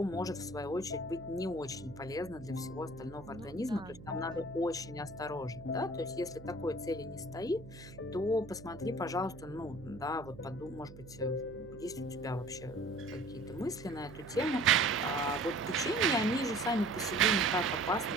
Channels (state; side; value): noise; right; hum, 16 dB below the sound